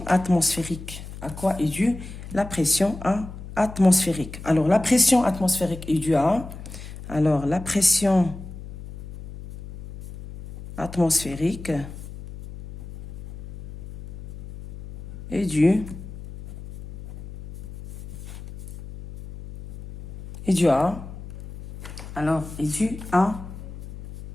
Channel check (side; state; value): left; noise; hum, 12 dB below the sound